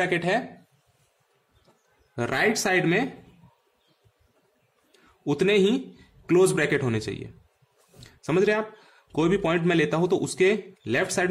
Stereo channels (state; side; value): identical; both; correlation 1.00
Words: है, राइट साइड में उतने ही क्लोज ब्रैकेट होने चाहिए। समझ रहे आप? कोई भी पॉइंट मैं लेता हूं तो उसके लेफ्ट साइड